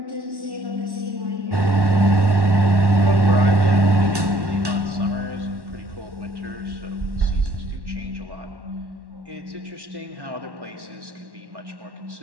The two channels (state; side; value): late; left; 1.1 ms